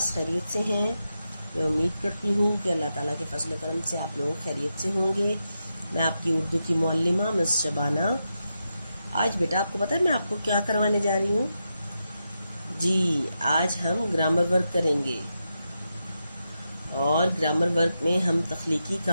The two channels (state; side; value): inverted; both; correlation -0.87